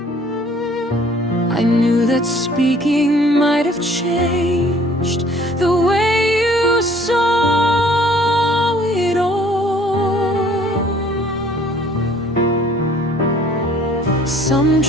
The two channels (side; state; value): both; normal; correlation 0.56